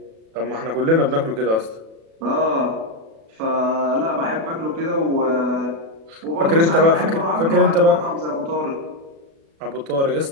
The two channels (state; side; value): late; left; 36 ms